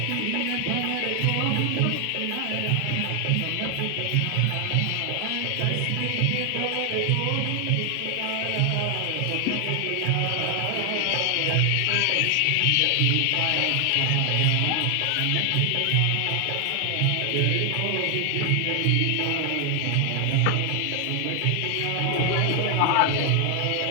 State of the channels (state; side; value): different; both; correlation 0.00